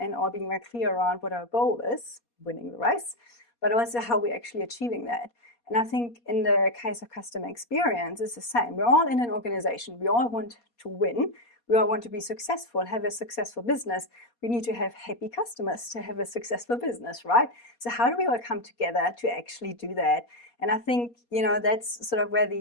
all being very clear around what our goal is, winning the race, but also how we're actually achieving that. And I think in the case of customer experience, it's the same. We're all in an organization. We all want to win. We all want to be successful, have a successful business. We need to have happy customers to have a successful business, right? So how do we all come together to actually do that? And I think, you know, that's sort of where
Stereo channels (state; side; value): late; right; 4.2 ms